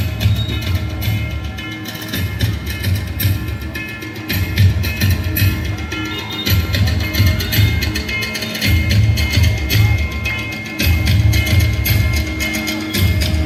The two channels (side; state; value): both; identical; correlation 1.00